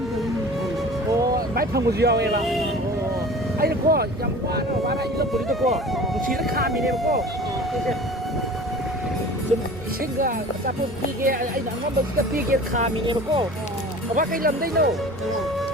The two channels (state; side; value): normal; both; correlation 0.40